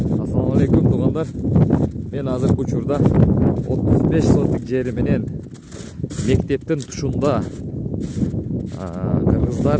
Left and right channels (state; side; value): identical; both; correlation 1.00